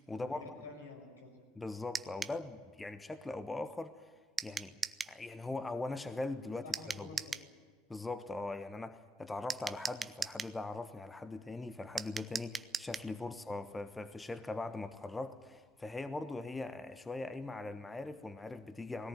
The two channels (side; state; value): both; normal; correlation 0.85